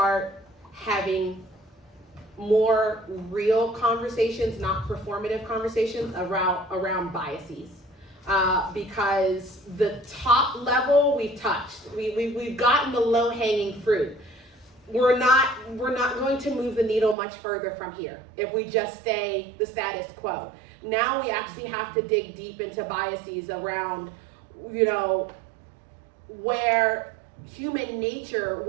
having more real conversations, not performative conversations around biases. Because the top level we've touched, we've gotten the low-hanging fruit. We're not going to move the needle much further from here if we just stay the status quo. Now we actually have to dig deep into biases around, where human nature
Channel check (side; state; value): left; drops out; at 17.2 s